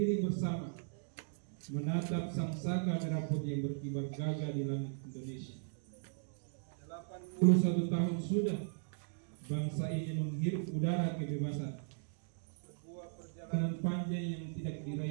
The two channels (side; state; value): left; silent; digital silence